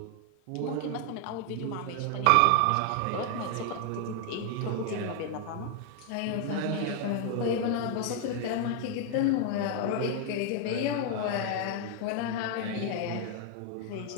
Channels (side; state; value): both; different; correlation 0.00